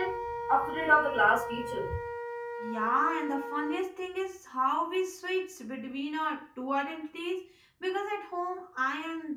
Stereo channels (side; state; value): both; identical; correlation 1.00